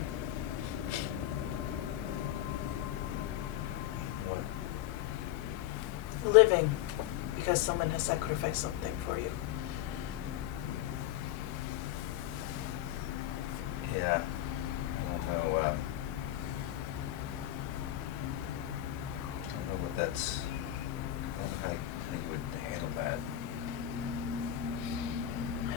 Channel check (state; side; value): quieter; right; 12.8 dB